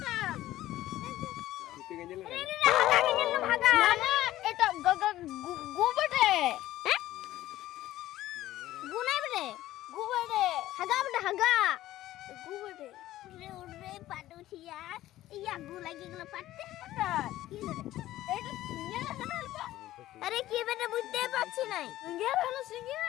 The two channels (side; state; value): right; quieter; 14.8 dB